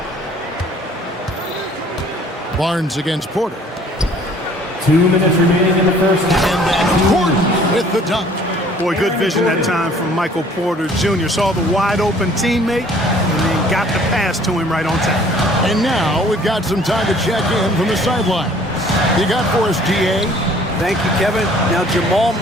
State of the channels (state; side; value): normal; both; correlation 0.55